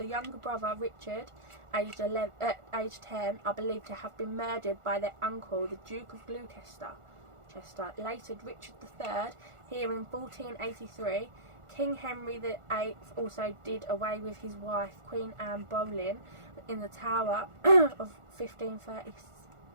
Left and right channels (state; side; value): late; left; 1.4 ms